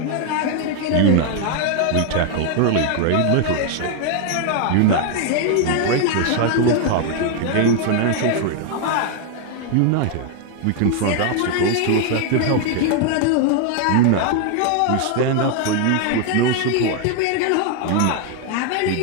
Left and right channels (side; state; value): both; different; correlation 0.00